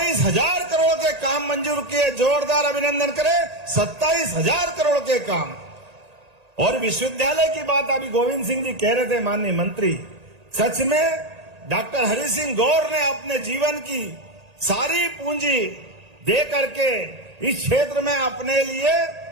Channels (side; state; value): left; late; 1.8 ms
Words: करोड़ के काम मंजूर किए। जोरदार अभिनंदन करें, 27,000 करोड़ के काम। और विश्वविद्यालय की बात अभी गोविंद सिंह जी कह रहे थे, माननीय मंत्री, सच में डॉक्टर हरि सिंह गौर ने अपने जीवन की सारी पूंजी दे करके इस क्षेत्र में अपने लिए